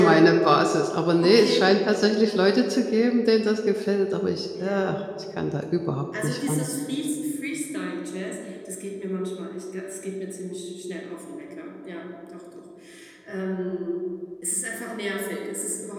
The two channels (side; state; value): both; identical; correlation 1.00